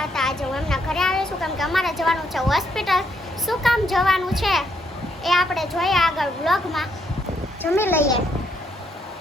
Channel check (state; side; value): normal; both; correlation 0.74